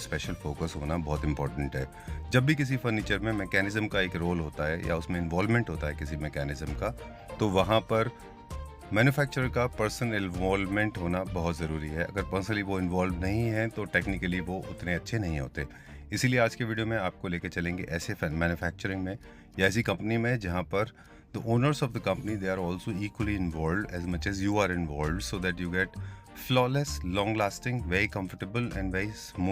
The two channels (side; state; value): both; identical; correlation 1.00